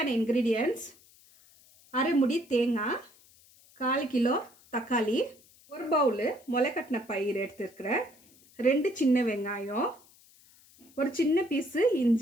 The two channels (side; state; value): left; noise; hiss, 27 dB below the sound